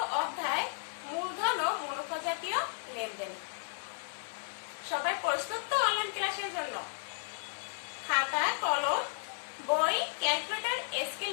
অধ্যায় মূলধন ও মুনাফা জাতীয় লেনদেন। সবাই প্রস্তুত তো অনলাইন ক্লাসের জন্য? খাতা, কলম, বই, ক্যালকুলেটর, স্কেল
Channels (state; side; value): silent; right; 55 dB below the other